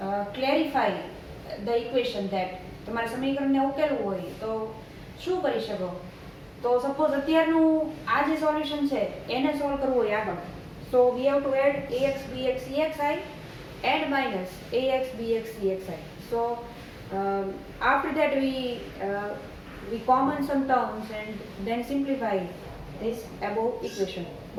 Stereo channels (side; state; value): both; identical; correlation 1.00